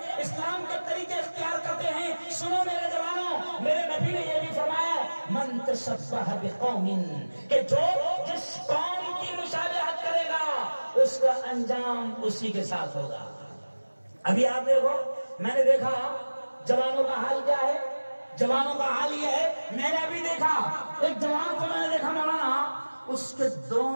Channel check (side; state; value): both; inverted; correlation -1.00